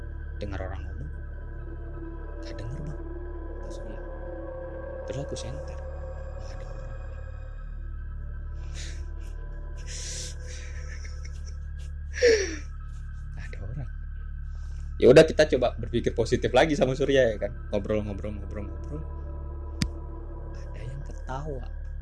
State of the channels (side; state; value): both; identical; correlation 1.00